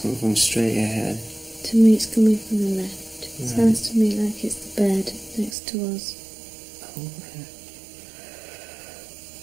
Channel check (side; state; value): left; drops out; at 5.6 s